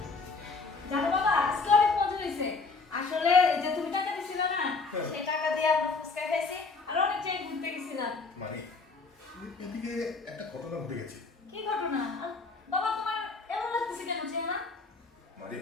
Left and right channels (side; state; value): right; quieter; 4.2 dB